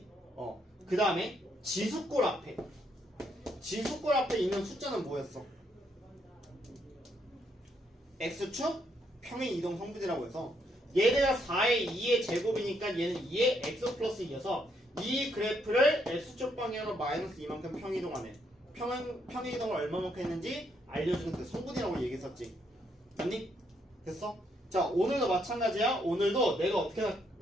그 다음에 지수꼴 앞에 있는 숫자는 뭐였어? x축 평행 이동 성분이라고 해서 얘네가 4의 2의 제곱이니까 얘는 2의 x 플러스 2여서 이 그래프를 x축 방향으로 마이너스 2만큼 평이동하네. 평이동을 얼마만큼 했는지 알려주는 그 성분이라고 얘기했었지. 맞니? 됐어? 자, 오늘도 마찬가지야. 오늘도 내가 어떻게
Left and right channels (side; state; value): both; normal; correlation 0.74